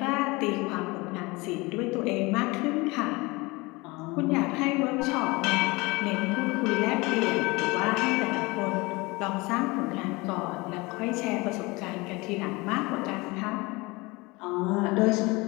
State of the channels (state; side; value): quieter; right; 24.0 dB